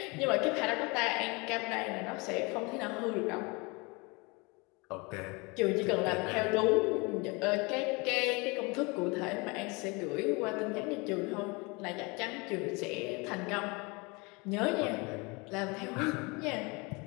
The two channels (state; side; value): quieter; right; 27.7 dB